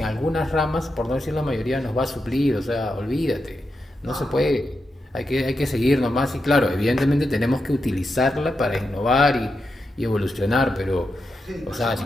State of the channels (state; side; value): normal; both; correlation 0.87